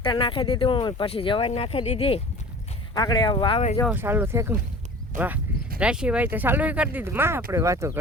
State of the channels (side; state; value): both; normal; correlation 0.41